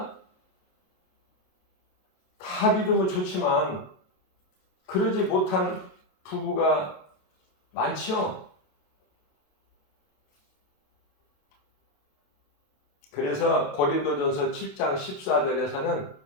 다 믿으면 좋지만 그러지 못한 부부가 많죠. 그래서 고린도전서 7장 14절에서는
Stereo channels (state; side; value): late; right; 28 ms